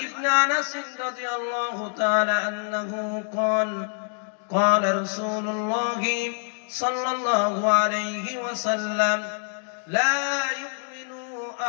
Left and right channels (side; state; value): right; silent; 61 dB below the other